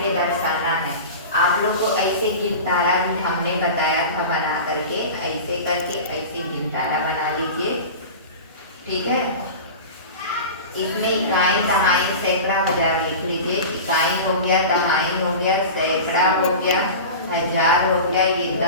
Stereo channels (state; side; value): inverted; both; correlation -0.31